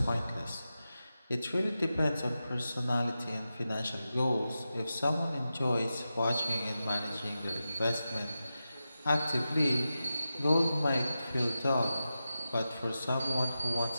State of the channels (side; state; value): both; inverted; correlation -0.92